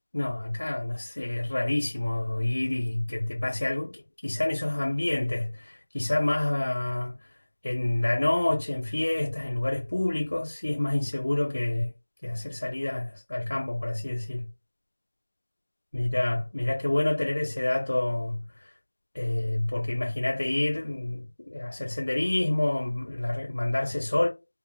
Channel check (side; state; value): both; inverted; correlation -1.00